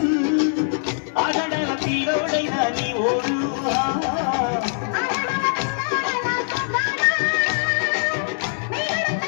ఆగడాల పిల్లోడైనా నీ ఓడు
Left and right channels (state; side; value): silent; right; digital silence